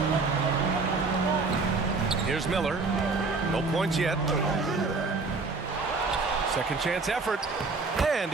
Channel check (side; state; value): left; quieter; 4.0 dB